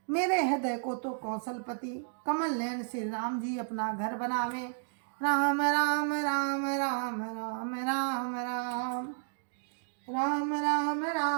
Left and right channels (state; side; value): silent; left; digital silence